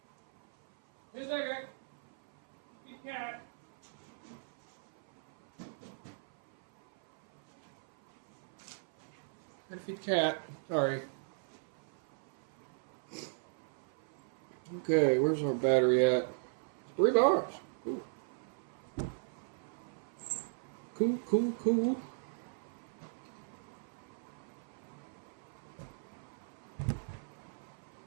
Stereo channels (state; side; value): silent; left; 53 dB below the other